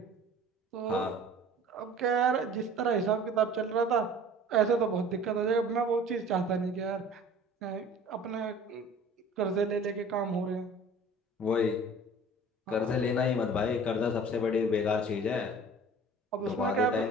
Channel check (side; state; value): both; normal; correlation 0.45